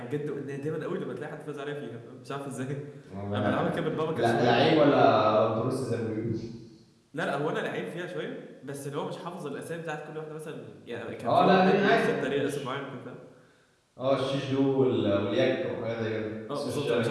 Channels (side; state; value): both; identical; correlation 1.00